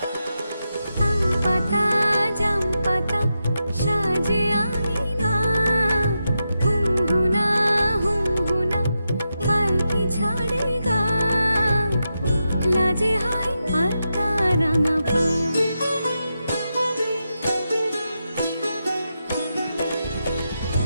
সাজে আঙিনা, হুমহুনা হুমহুনা পালকি ছাড়ে গা, লাজে হয় আলতা রাঙা পা।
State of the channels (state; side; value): inverted; both; correlation -0.88